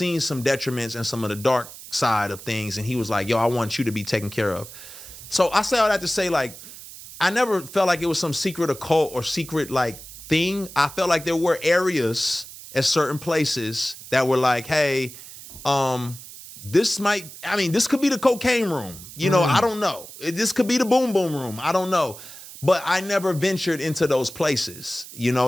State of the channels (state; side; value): noise; right; hiss, 15 dB below the sound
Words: some detriments and some of the dark side of things. And he was like, yo, I want you to be taken care of. So I say all that to say, like, I never felt like it was some secret occult or secret like thing. I felt like there were areas at certain places that were like, hey, this could be the cocaine room. You know, I don't know. This could be the boom boom room. I don't know. But I never ventured into those places. You